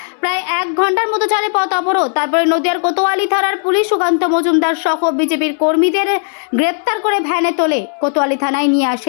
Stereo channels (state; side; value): silent; right; 65 dB below the other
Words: প্রায় 1 ঘন্টার মতো চলে পথ অবরোধ। তারপরে নদিয়ার কোতোয়ালি থানার পুলিশ সুকান্ত মজুমদার সহ বিজেপির কর্মীদের গ্রেপ্তার করে ভ্যানে তোলে কোতোয়ালি থানায় নিয়ে